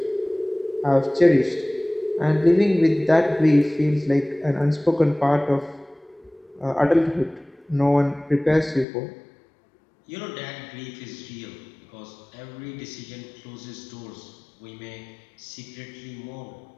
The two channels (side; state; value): right; drops out; at 8.8 s